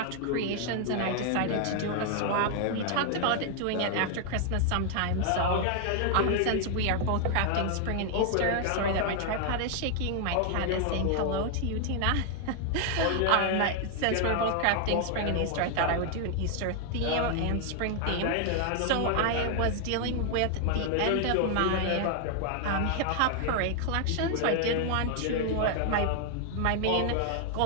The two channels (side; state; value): both; different; correlation 0.00